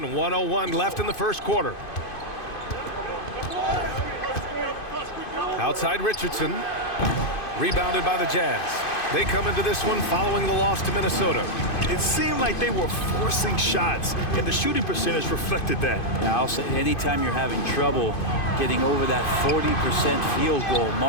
1:01 left in the first quarter. Outside Richardson. Rebounded by the Jazz. They come into this one following the loss to Minnesota. It seemed like they were forcing shots, and the shooting percentage reflected that. Yeah, I'll say anytime you're having trouble getting over that 40% field goal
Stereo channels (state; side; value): late; right; 2.5 ms